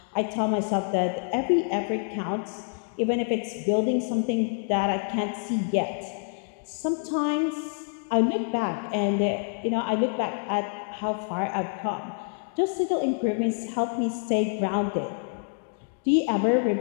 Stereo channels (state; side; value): silent; right; 59 dB below the other